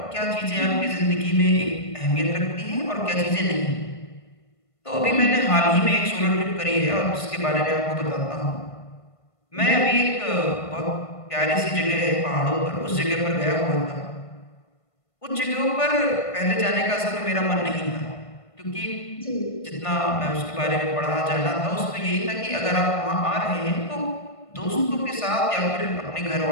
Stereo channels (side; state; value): right; late; 1.5 ms